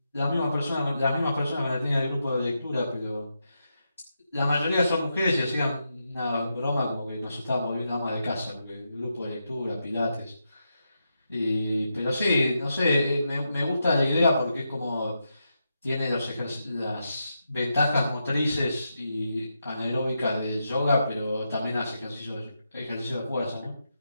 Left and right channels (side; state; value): both; inverted; correlation -0.85